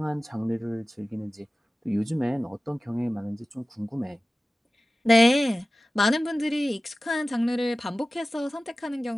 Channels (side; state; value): both; normal; correlation 0.96